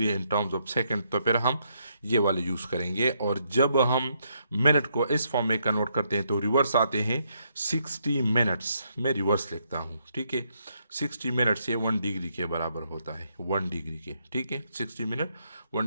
in terms of second, तो फिर हम ये वाले यूज़ करेंगे। और जब हम मिनट को इस फॉर्म में कन्वर्ट करते हैं तो रिवर्स आते हैं। 60 मिनट्स में रिवर्स लिखता हूँ। ठीक है, 60 मिनट्स ये 1 डिग्री के बराबर होता है, 1 डिग्री के। ठीक है, 60 मिनट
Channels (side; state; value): both; inverted; correlation -0.76